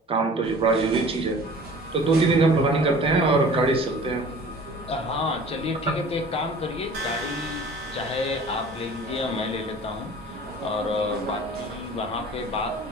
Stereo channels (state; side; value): normal; both; correlation 0.45